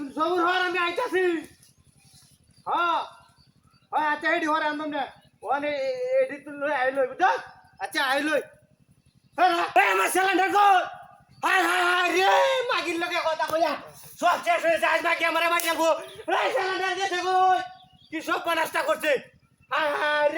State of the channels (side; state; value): both; identical; correlation 1.00